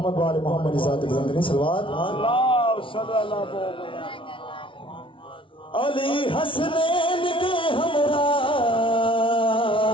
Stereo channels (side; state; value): right; late; 0.25 ms